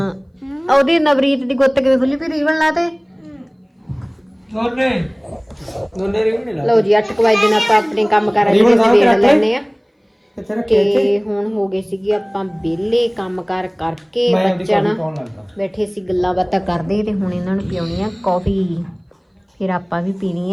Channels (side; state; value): both; identical; correlation 1.00